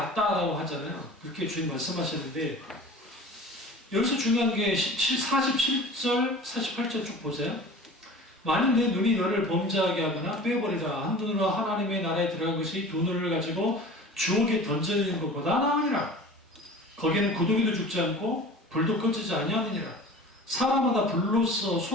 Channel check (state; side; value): normal; both; correlation 0.40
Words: 하잖아요. 그렇게 주님 말씀하셨는데, 여기서 중요한 게 47절, 48절 쭉 보세요. 만일 내 눈이 너를 범죄하게 하거나 빼버리라. 한 눈으로 하나님의 나라에 들어간 것이 두 눈을 가지고 주옥에 던져지는 것보다 나으니라. 거기는 구더기도 죽지 않고 불도 꺼지지 아니하느니라. 사람마다 불로써